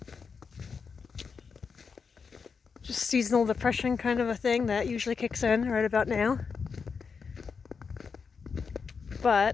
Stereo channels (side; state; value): right; quieter; 5.6 dB